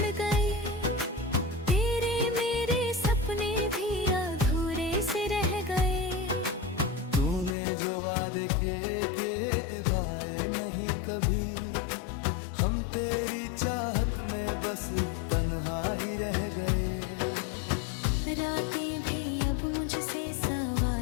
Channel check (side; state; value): right; drops out; at 7.6 s